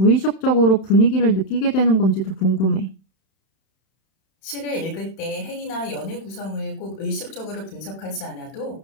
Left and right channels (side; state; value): right; late; 31 ms